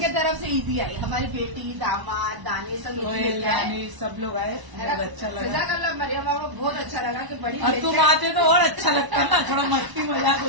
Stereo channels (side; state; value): left; late; 1.0 ms